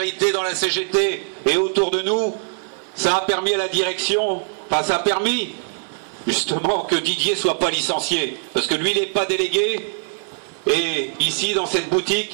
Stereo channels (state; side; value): silent; left; 56 dB below the other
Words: dans la CGT et autour de nous, ça a permis à la direction, ça a permis justement que Didier ne soit pas licencié. Parce que lui, il n'est pas délégué. Et ici, dans cette